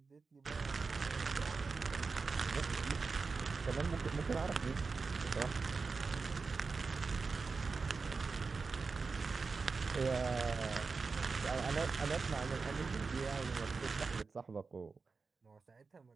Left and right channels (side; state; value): left; quieter; 4.5 dB